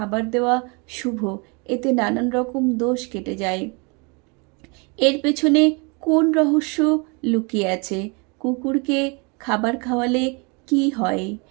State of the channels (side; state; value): left; quieter; 31.4 dB